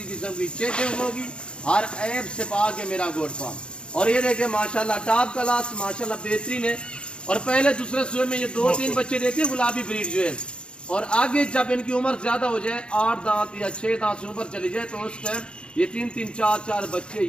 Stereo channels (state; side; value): late; right; 0.053 ms